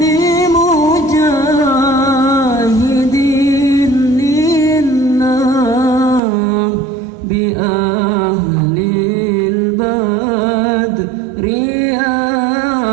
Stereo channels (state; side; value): drops out; left; at 6.2 s